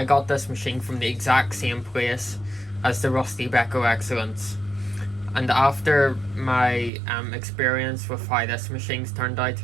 got this machine from the exact same place as the rusty Beko Excellence. And after my experience with how this machine's turned out,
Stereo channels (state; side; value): drops out; left; at 6.9 s